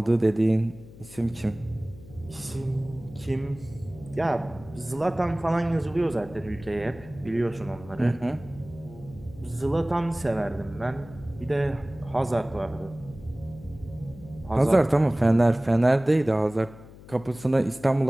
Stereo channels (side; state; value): left; noise; hum, 19 dB below the sound